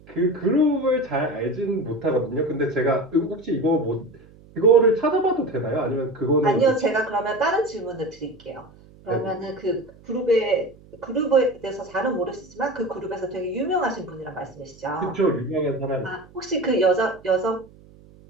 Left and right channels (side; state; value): right; noise; hum, 24 dB below the sound